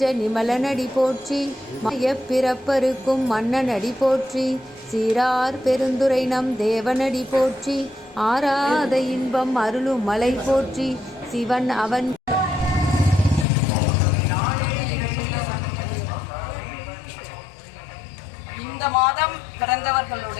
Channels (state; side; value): drops out; right; at 13.5 s